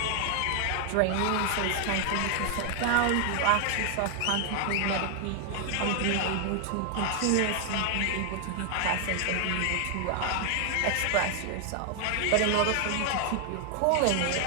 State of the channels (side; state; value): both; different; correlation 0.00